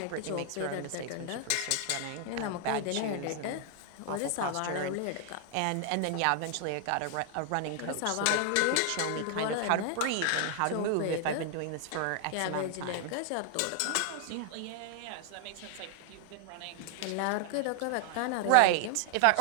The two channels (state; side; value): different; both; correlation 0.00